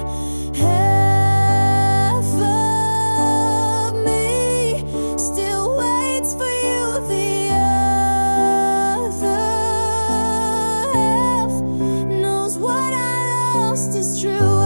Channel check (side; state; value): both; inverted; correlation -1.00